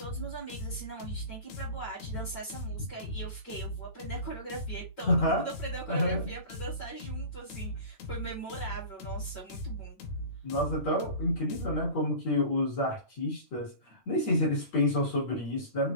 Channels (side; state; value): right; late; 9.0 ms